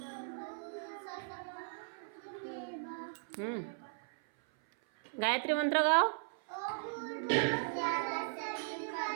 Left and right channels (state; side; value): silent; left; 53 dB below the other